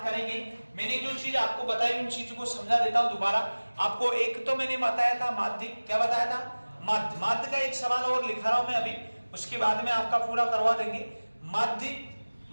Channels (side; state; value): both; inverted; correlation -1.00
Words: करेंगे, मैंने जो चीज आपको बताई उन चीजों को समझा देता हूं दोबारा आपको। एक तो मैंने बताया था माध्य, क्या बताया था? माध्य। माध्य का एक सवाल और लिखा रहा हूं मैं अभी, उसके बाद में आपका पूरा करवा देंगे। माध्य,